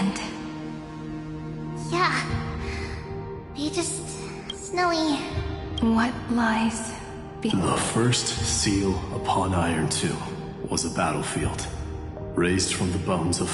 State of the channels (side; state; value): both; identical; correlation 1.00